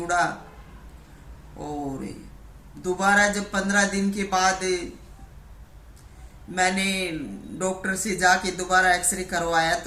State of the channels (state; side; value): identical; both; correlation 1.00